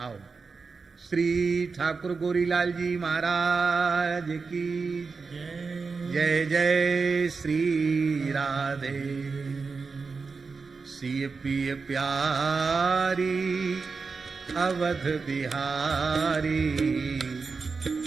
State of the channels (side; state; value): left; quieter; 4.7 dB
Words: श्री ठाकुर गोरीलाल जी महाराज की जय जय। श्री राधे सिय पिय प्यारी अवध बिहारी,